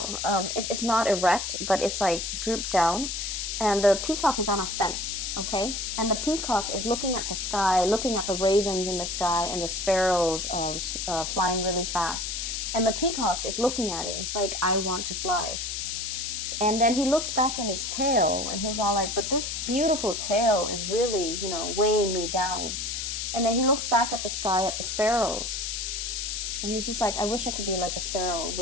It's not erect, but it's like drooped down. And the peacock is on a fence, okay? And the peacock is looking at the sky, looking at the ravens in the sky and the sparrows flying really fast. And the peacock is looking at it. It's like, I want to fly. And then he looks back at his tail, and he's all like, but this beautiful tail is really, you know, weighing me down. And then he looks back at the sky, at the sparrows. And he's just like, I wish I could be like a sparrow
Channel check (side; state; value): left; noise; hiss, 3 dB below the sound